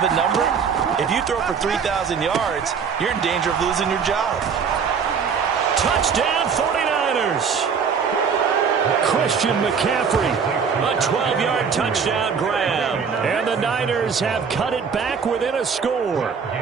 a number, if you throw for 3,000 yards, you're in danger of losing your job. Touchdown 49ers. Christian McCaffrey, a 12-yard touchdown grab. And the Niners have cut it back within a score.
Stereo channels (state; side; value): quieter; left; 6.3 dB